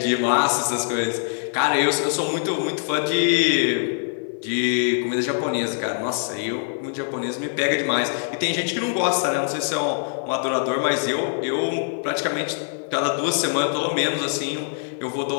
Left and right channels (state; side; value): silent; right; 63 dB below the other